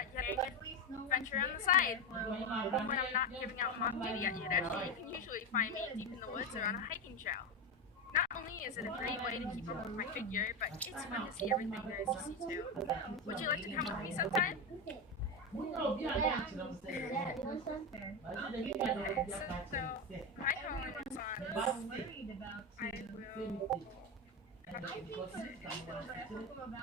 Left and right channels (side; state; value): both; normal; correlation 0.14